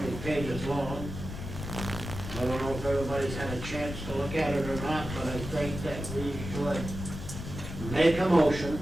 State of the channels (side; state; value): left; noise; rumble, 8 dB below the sound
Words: pages long. I don't know if everybody's had a chance to look at it or not, but I think that we should make a motion